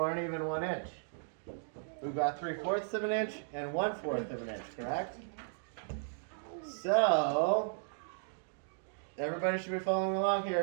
aren't even 1 inch. We've got 3/4 of an inch and 1/4 of an inch, correct? So, everybody should be following along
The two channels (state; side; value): silent; left; digital silence